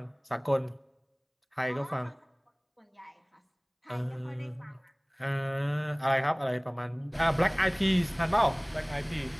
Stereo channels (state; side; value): identical; both; correlation 1.00